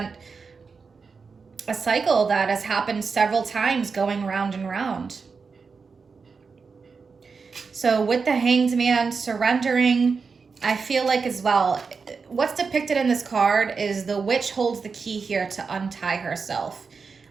a cycle that has happened several times going round and round. So with the Hanged Man surrendering, I feel like as well, what's depicted in this card is the witch holds the key here to untie herself.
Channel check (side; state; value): left; quieter; 5.1 dB